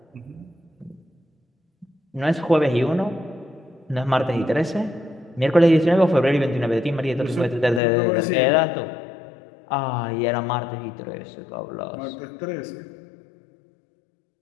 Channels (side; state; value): right; drops out; at 7.8 s